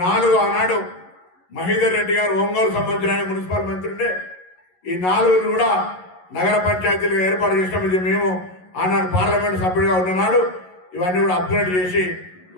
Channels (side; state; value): right; late; 11 ms